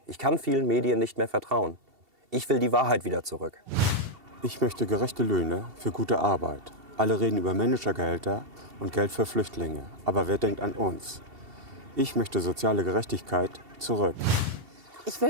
Ich kann vielen Medien nicht mehr vertrauen. Ich will die Wahrheit wieder zurück. Ich möchte gerechte Löhne für gute Arbeit. Alle reden über Managergehälter und Geld für Flüchtlinge. Aber wer denkt an uns? Ich möchte soziale Gerechtigkeit zurück. Ich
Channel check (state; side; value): late; left; 2.7 ms